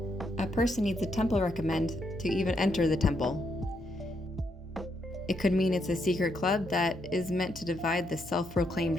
A person needs a temple recommend to even enter the temple. It could mean it's a secret club that is meant to divide the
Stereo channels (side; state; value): both; normal; correlation 0.77